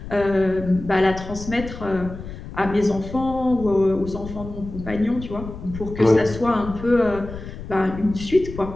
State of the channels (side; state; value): left; noise; rumble, 11 dB below the sound